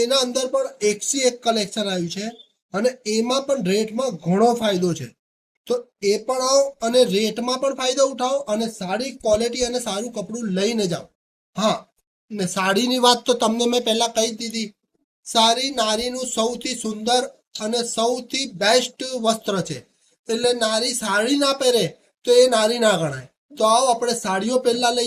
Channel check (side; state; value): both; identical; correlation 1.00